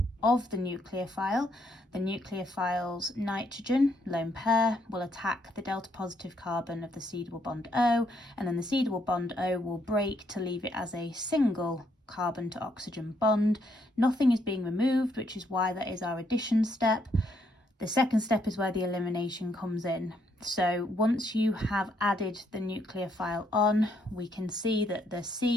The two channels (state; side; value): normal; both; correlation 0.73